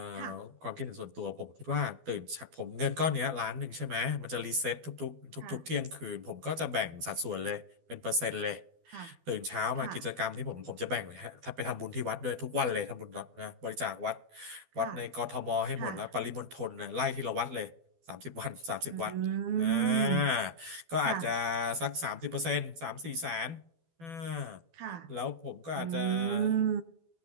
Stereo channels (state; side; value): late; left; 12 ms